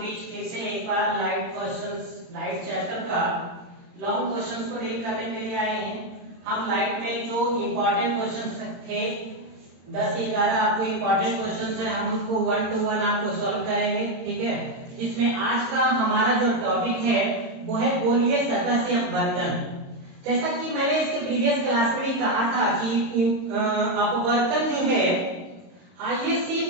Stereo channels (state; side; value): late; left; 22 ms